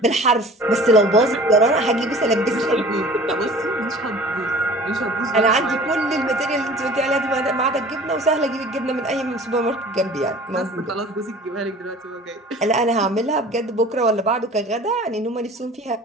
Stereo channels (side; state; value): both; normal; correlation 0.45